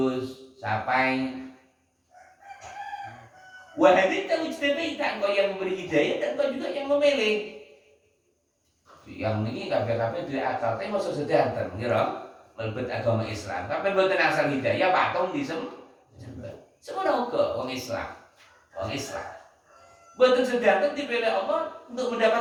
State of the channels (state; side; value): identical; both; correlation 1.00